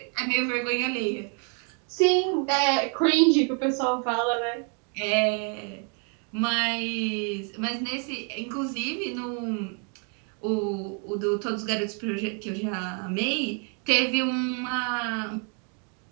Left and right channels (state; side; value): quieter; left; 38.6 dB